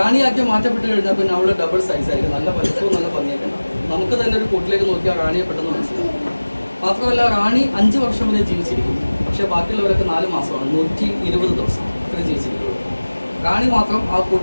മാറ്റപ്പെട്ട് കഴിഞ്ഞാൽ പിന്നെ അവൾ ഡബിൾ സൈസ് ആയിരിക്കും. നല്ല വലിപ്പവും നല്ല ഭംഗിയൊക്കെ ഉണ്ടാവും. നമുക്ക് തന്നെ ഒരു കൂട്ടിലേക്ക് നോക്കിയാൽ റാണിയെ പെട്ടെന്ന് മനസ്സിലാവും. മാത്രമല്ല റാണി 5 വർഷം വരെ ജീവിച്ചിരിക്കും. പക്ഷേ ബാക്കിയുള്ളവരൊക്കെ 4 മാസമാണ്, 120 ദിവസം അത്രയും ജീവിച്ചിരിക്കുള്ളൂ. റാണി മാത്രം ആ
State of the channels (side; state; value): both; inverted; correlation -1.00